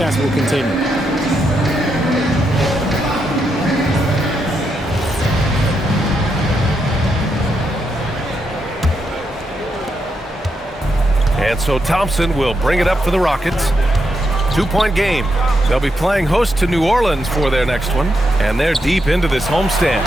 will continue. And so Thompson will bring it up for the Rockets. 2-point game. They'll be playing host to New Orleans for their next one, and they're deep into this homestand.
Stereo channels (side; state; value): both; normal; correlation 0.82